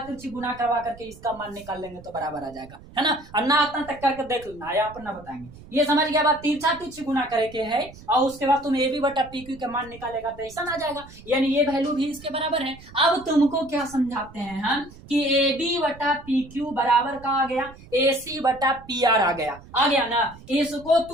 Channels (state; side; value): noise; right; rumble, 19 dB below the sound